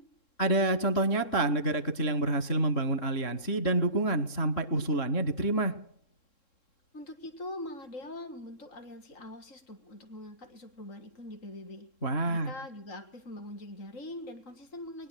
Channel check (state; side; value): late; right; 3.7 ms